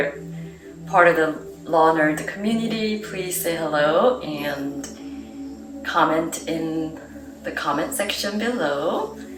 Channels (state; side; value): identical; both; correlation 1.00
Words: part of the Law Nerd community, please say hello and comment in the comment section below.